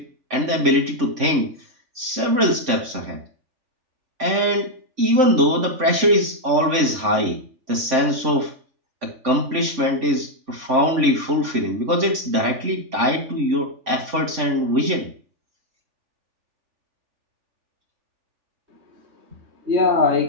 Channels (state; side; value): late; left; 3.5 ms